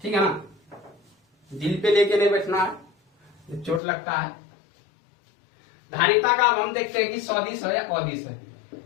ठीक है ना, दिल पे लेके नहीं बैठना है, चोट लगता है। धारिता का अब हम देखते हैं कि सदिश है या अदिश है।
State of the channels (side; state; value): right; drops out; at 3.8 s